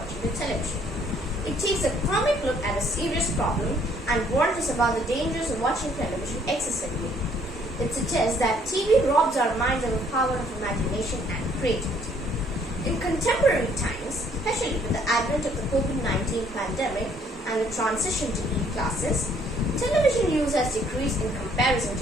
the television. It takes a comic look at a serious problem and warns us about the dangers of watching television excessively. It suggests that TV robs our minds of the power of imagination and creativity. In contemporary times, especially with the advent of the COVID-19 pandemic and the transition to e-classes, television use has decreased in comparison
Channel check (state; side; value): normal; both; correlation 0.64